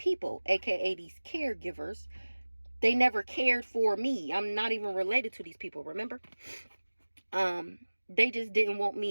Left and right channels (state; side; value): inverted; both; correlation -1.00